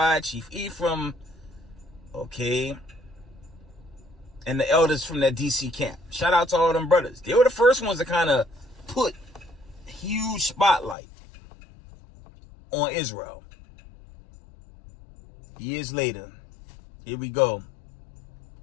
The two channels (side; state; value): right; drops out; at 11.0 s